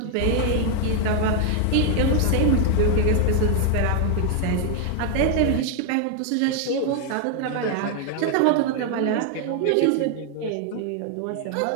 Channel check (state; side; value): different; both; correlation 0.00